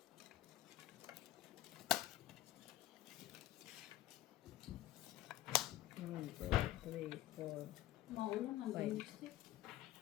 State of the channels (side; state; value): right; quieter; 14.6 dB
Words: Maulang hanggang lipstick.